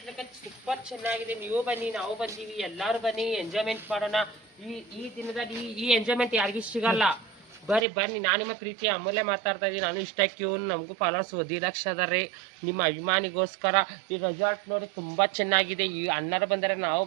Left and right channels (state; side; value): drops out; left; at 7.9 s